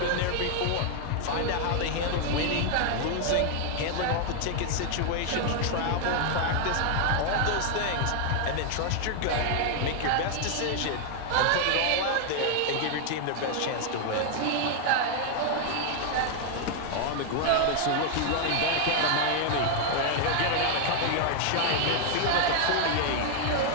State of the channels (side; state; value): both; different; correlation 0.00